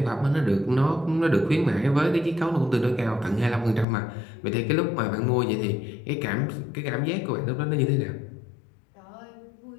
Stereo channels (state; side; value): drops out; right; at 3.9 s